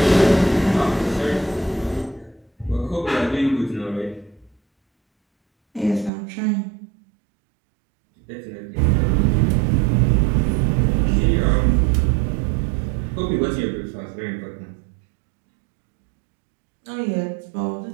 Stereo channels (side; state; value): left; drops out; at 6.1 s